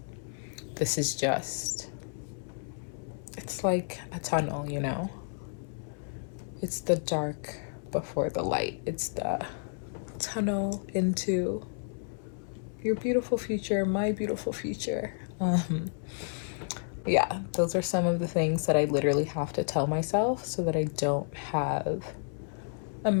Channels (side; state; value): right; silent; 57 dB below the other